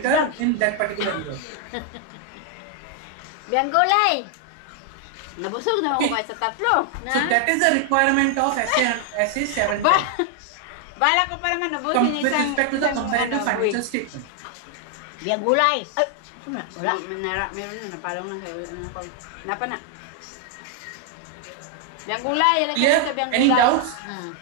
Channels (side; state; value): both; different; correlation 0.00